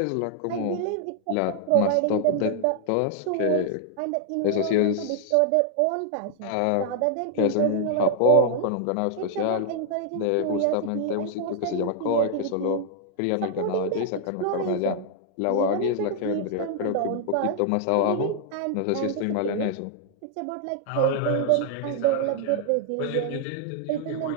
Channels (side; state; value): both; different; correlation -0.01